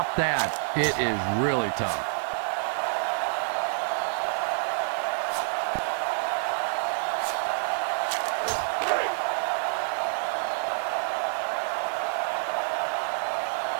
that, it is really tough.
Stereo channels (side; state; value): left; silent; digital silence